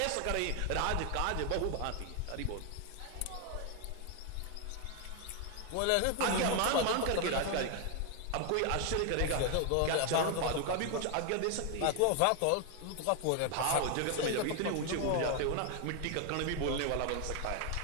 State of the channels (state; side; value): different; both; correlation 0.01